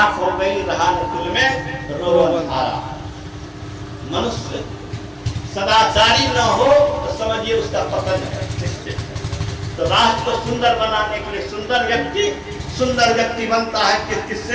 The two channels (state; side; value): identical; both; correlation 1.00